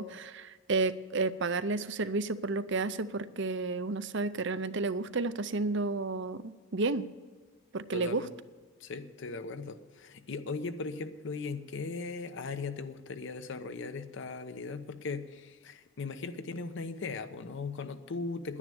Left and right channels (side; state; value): both; normal; correlation 0.04